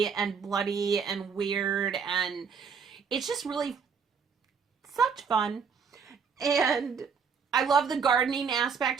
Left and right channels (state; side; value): quieter; left; 6.1 dB